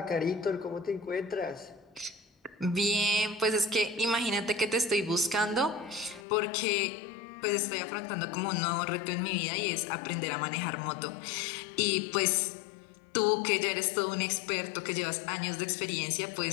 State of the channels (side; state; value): right; drops out; at 6.2 s